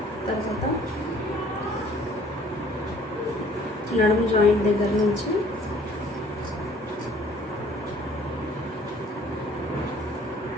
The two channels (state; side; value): normal; both; correlation 0.56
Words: తర్వాత నడుము జాయింట్ దగ్గర నుంచి